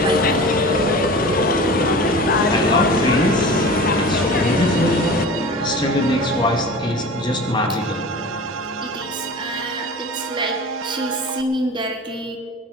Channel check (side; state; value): both; normal; correlation 0.36